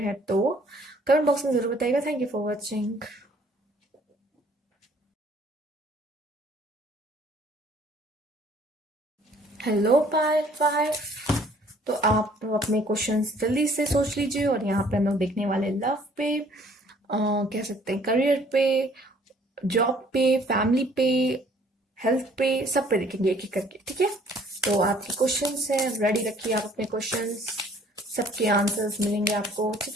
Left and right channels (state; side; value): normal; both; correlation 0.58